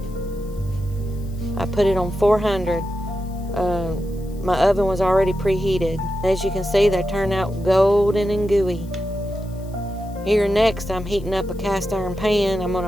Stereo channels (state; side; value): noise; left; hiss, 26 dB below the sound